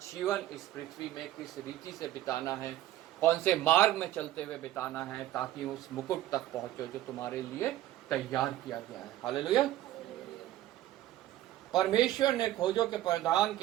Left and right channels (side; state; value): left; quieter; 14.0 dB